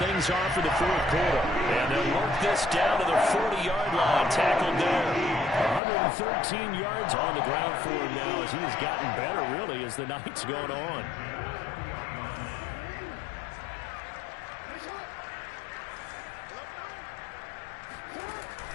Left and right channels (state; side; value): drops out; right; at 5.8 s